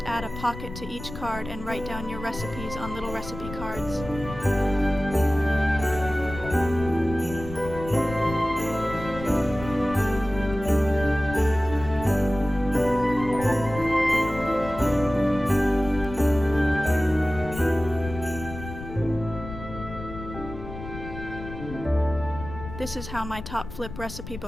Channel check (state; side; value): noise; left; rumble, 11 dB below the sound